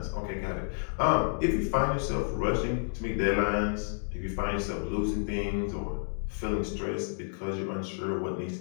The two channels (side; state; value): right; silent; digital silence